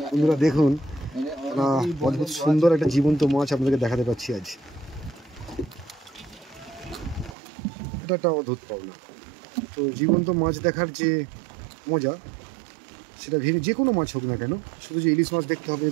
বন্ধুরা দেখুন, অদ্ভুত সুন্দর একটা জীবন্ত মাছ আপনাদেরকে দেখাতে পাচ্ছি আজ। এটা একটা অদ্ভুত পাওনা। তো জীবন্ত মাছ দেখার যে মজা, সেটা যে কোনো মাছ হোক না কেন, শুধু যে ইলিশ মাছ দেখতে হবে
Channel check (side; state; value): left; drops out; at 7.4 s